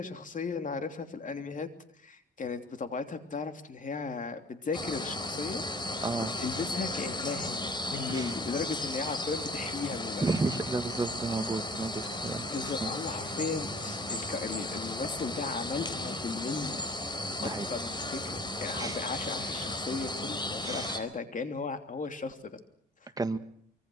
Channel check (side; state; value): both; normal; correlation 0.49